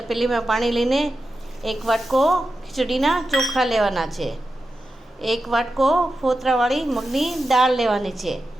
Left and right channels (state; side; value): normal; both; correlation 0.91